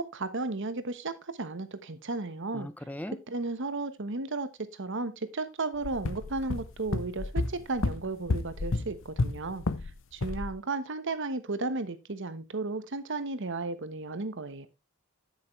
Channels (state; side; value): normal; both; correlation 0.26